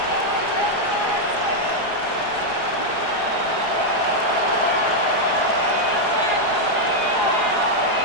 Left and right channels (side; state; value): right; late; 4.8 ms